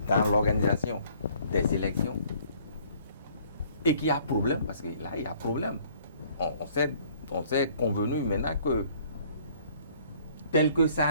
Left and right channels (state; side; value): inverted; both; correlation -0.58